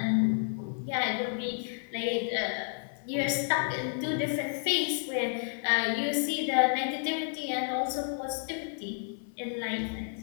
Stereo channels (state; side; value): silent; right; digital silence